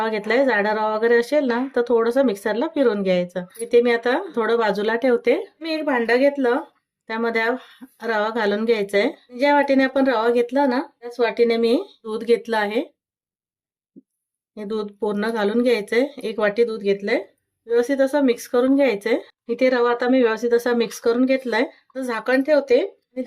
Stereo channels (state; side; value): identical; both; correlation 1.00